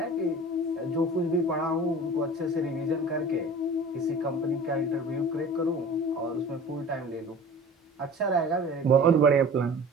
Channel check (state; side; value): normal; both; correlation 0.41